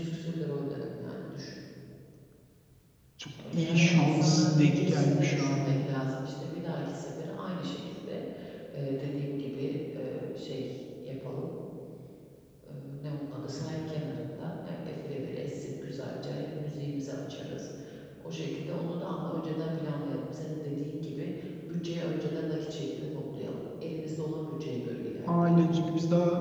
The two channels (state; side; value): identical; both; correlation 1.00